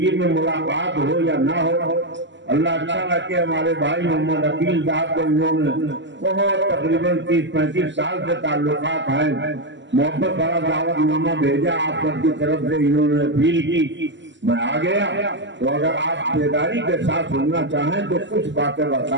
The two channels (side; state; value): left; late; 0.54 ms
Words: میں ملاقات ہو یا نہ ہو اللہ اچھا رکھے. ہمارے بھائی محمد عقیل صاحب کو انہوں نے بہت تقریباً 30-35 سال سے تعلقات ہیں محبت بڑا دعوت نامہ بھیجا آپ سب کی طرف سے انہوں نے اپیل کی میں آ گیا. تو اگر آپ بیداری کے ساتھ سننا چاہیں تو کچھ باتیں